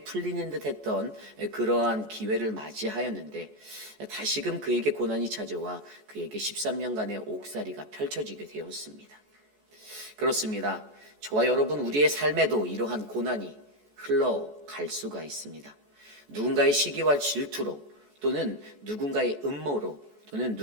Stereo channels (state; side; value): late; left; 14 ms